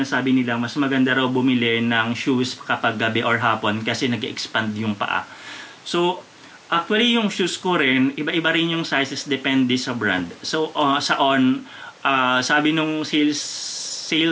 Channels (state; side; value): identical; both; correlation 1.00